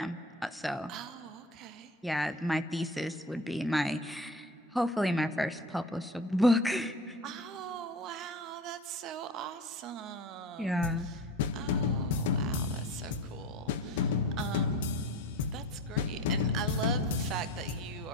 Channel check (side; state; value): both; normal; correlation 0.35